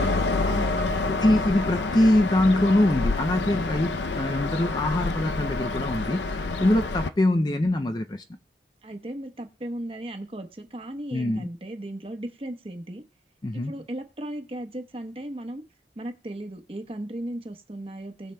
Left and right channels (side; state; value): both; normal; correlation 0.79